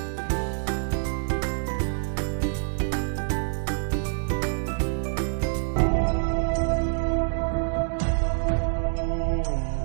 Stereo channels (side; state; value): left; silent; digital silence